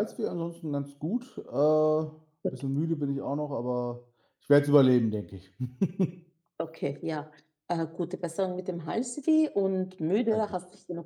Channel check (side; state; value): both; identical; correlation 1.00